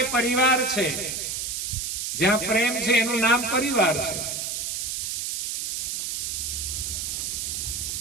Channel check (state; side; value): noise; right; hiss, 2 dB below the sound